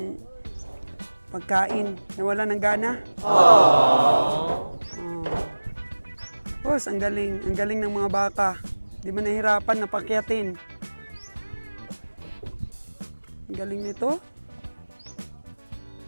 pagkain. Nawala ng gana. Boss, ang galing ng mga baka. Di ba nahirapan na pakyatin? Ang galing nito.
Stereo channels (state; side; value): inverted; both; correlation -1.00